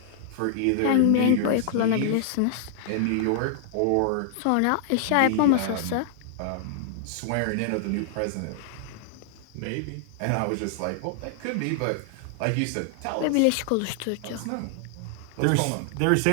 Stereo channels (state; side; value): different; both; correlation -0.01